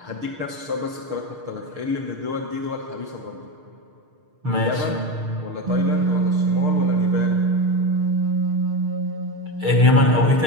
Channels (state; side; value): late; left; 6.6 ms